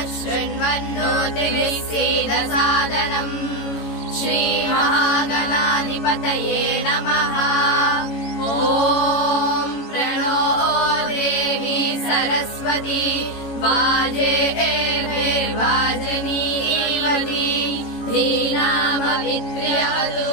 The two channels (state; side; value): late; right; 18 ms